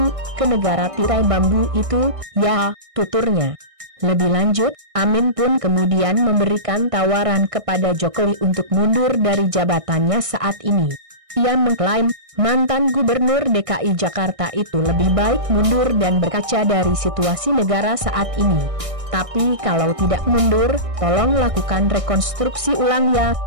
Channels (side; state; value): left; late; 1.6 ms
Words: ke negara tirai bambu itu, ya, tuturnya. Lebih lanjut, Amin pun kemudian memberikan tawaran kepada Jokowi untuk mundur dari jabatannya saat ini. Ia mengklaim, mantan gubernur DKI Jakarta itu lebih baik mundur dan berkaca dari situasi negara saat ini. Tapi kalau tidak mundur, tolong lakukan rekonstruksi ulang ya,